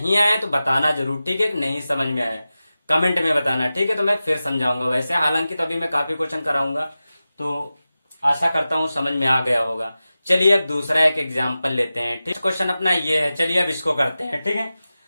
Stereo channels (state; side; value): inverted; both; correlation -0.94